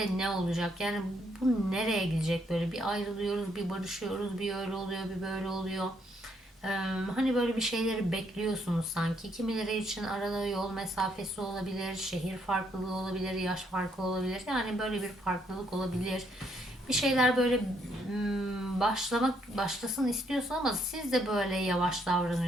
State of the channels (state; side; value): normal; both; correlation 0.72